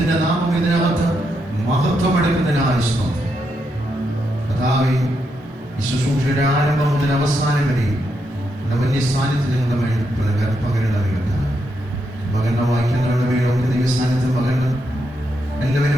നാമം ഇതിനകത്ത് മഹത്വമെടുക്കുന്നതിനായി സ്തോത്രം. കർത്താവേ, ഈ ശുശ്രൂഷയുടെ ആരംഭം മുതൽ അവസാനം വരെയും വലിയ സാന്നിധ്യം ഞങ്ങളുടെ മേൽ പകരണമേ കർത്താവേ. പകർന്ന വാക്യങ്ങളുടെ മേലൊക്കെ ദൈവ സാന്നിധ്യം പകരണം.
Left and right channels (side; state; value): both; normal; correlation 0.81